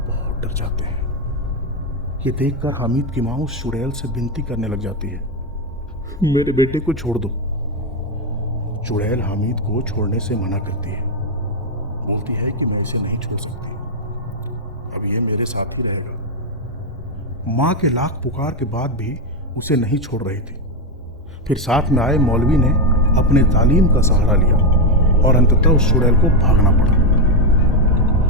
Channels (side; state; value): both; normal; correlation 0.06